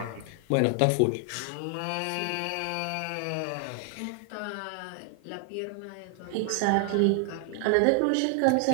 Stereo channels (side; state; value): both; different; correlation 0.00